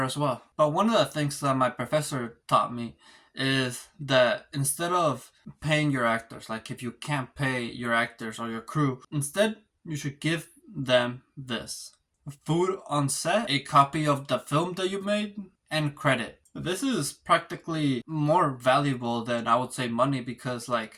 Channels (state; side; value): identical; both; correlation 1.00